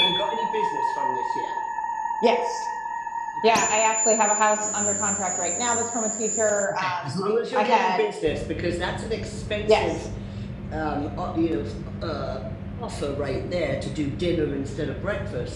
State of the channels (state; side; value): identical; both; correlation 1.00